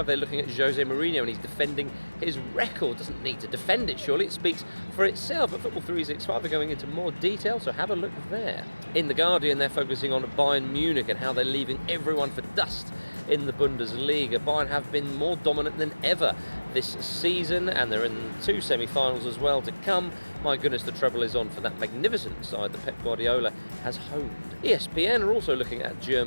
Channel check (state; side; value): inverted; both; correlation -1.00